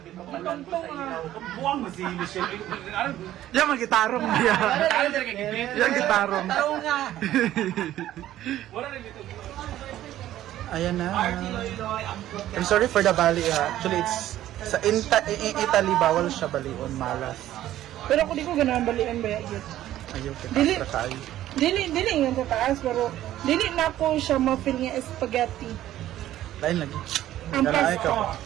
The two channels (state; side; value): quieter; left; 13.3 dB